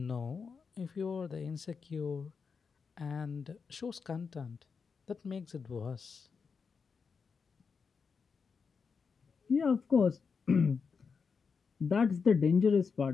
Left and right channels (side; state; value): right; quieter; 5.5 dB